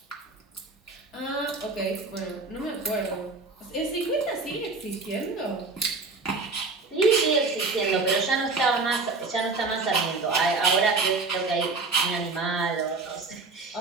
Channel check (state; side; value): quieter; left; 3.8 dB